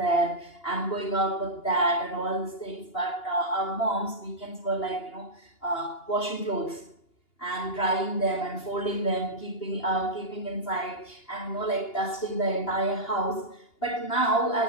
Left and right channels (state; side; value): late; right; 2.8 ms